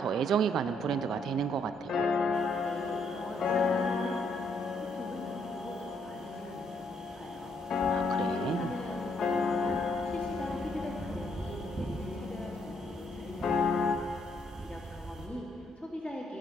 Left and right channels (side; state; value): both; normal; correlation 0.72